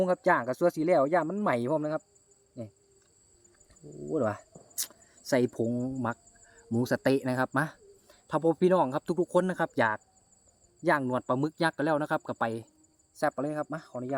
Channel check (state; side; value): identical; both; correlation 1.00